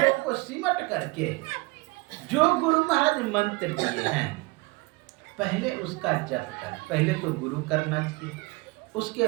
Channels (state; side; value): quieter; left; 24.2 dB